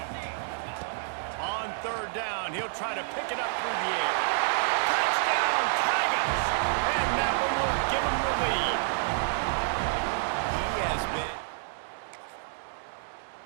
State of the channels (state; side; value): silent; left; digital silence